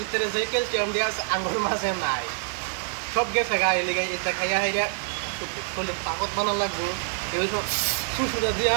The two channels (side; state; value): left; silent; digital silence